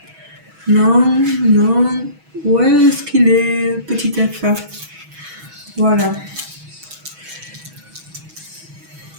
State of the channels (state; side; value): late; left; 6.2 ms